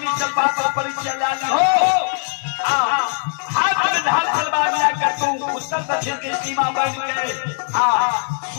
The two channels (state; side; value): silent; right; digital silence